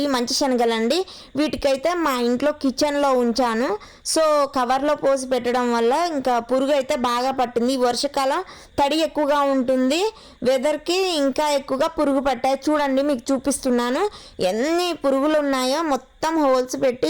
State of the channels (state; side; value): identical; both; correlation 1.00